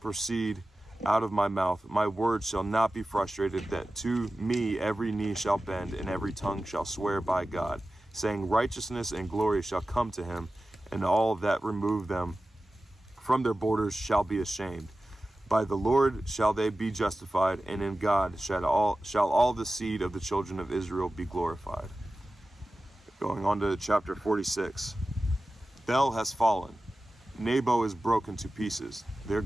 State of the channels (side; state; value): both; normal; correlation 0.95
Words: out of my mouth. My word shall not be frustrated, that to me every knee shall bend, and every tongue shall swear by God, saying, righteousness and glory shall come to him, and all that remove them from their borders shall be ashamed. By the Lord shall they be justified, and in God shall all the seed of the children of Israel be glorified. Going on to chapter 46. Bel has fallen. Nebo is broken to pieces. Their